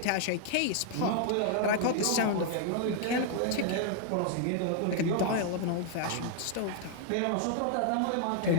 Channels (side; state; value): both; different; correlation 0.00